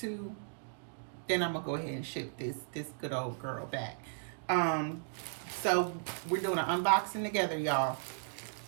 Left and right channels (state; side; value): silent; left; digital silence